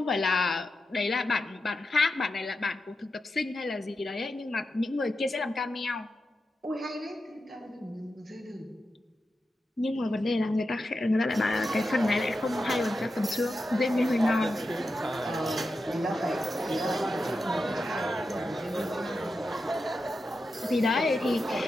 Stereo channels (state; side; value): normal; both; correlation 0.89